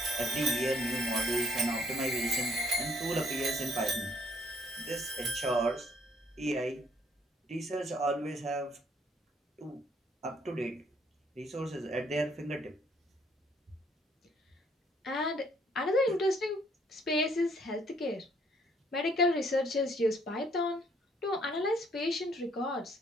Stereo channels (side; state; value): both; normal; correlation 0.65